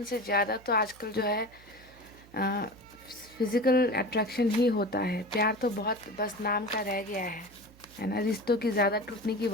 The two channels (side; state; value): right; noise; hum, 24 dB below the sound